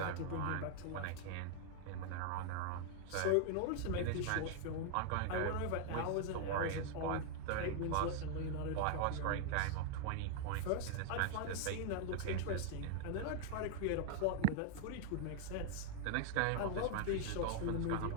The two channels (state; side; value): different; both; correlation 0.00